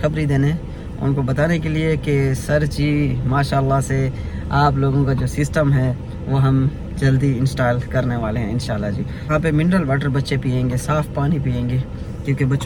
देने, उनको बताने के लिए कि सर जी माशाल्लाह से आप लोगों का जो सिस्टम है वो हम जल्दी इंस्टॉल करने वाले हैं इंशाल्लाह जी। यहाँ पे मिनरल वाटर बच्चे पिएंगे, साफ़ पानी पिएंगे, क्योंकि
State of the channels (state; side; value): identical; both; correlation 1.00